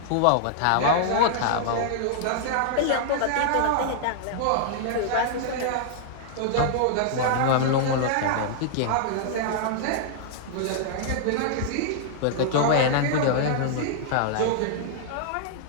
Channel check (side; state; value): both; different; correlation -0.01